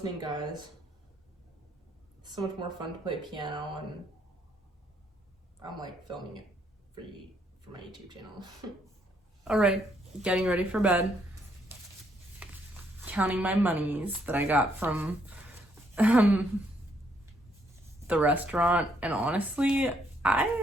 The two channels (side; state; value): both; normal; correlation 0.72